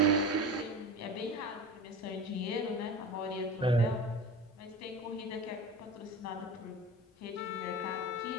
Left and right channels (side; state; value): both; normal; correlation 0.32